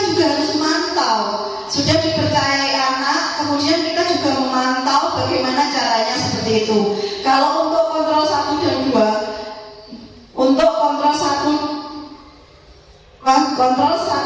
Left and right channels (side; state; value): both; identical; correlation 1.00